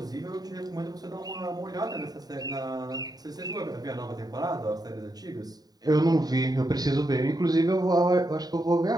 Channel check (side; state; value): left; late; 0.19 ms